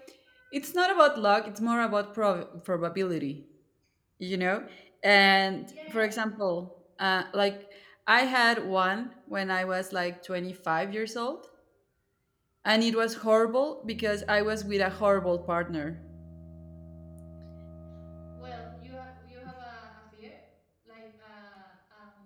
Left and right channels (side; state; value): both; identical; correlation 1.00